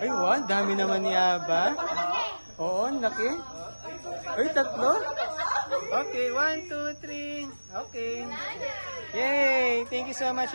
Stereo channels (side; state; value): both; inverted; correlation -1.00